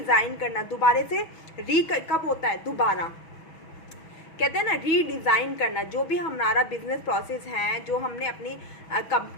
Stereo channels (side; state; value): right; late; 6.2 ms